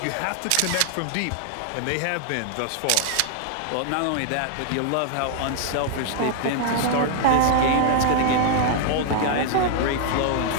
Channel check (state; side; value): different; both; correlation -0.01